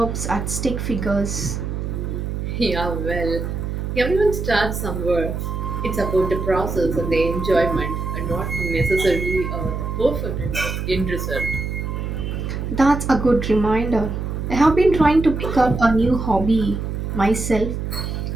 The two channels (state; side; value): noise; right; hum, 4 dB below the sound